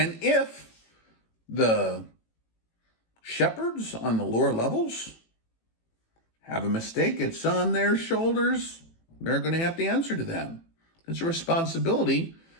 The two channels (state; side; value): late; right; 18 ms